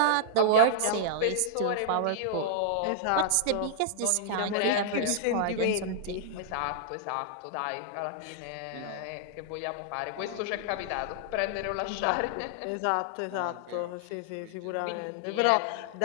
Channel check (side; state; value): both; different; correlation -0.01